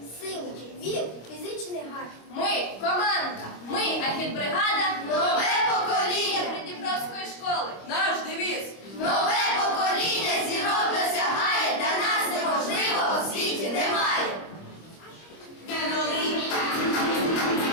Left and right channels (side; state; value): right; late; 25 ms